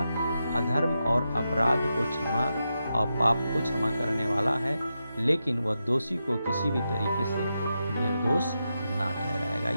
अधर्म और अपराध को क्षमा और पाप को क्षमा करने वाला है, लेकिन वह दोषी को किसी भी तरीके से निर्दोष ना ठहराएगा।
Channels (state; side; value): inverted; both; correlation -0.88